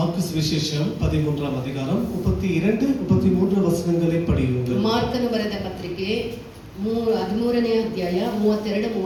సువిశేషம் 13ஆம் அதிகாரம் 32 33 வசனங்களை படியுங்கள். ಮಾರ್ಕನ ಬರೆದ ಪತ್ರಿಕೆ 13ನೇ ಅಧ್ಯಾಯ 32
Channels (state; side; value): identical; both; correlation 1.00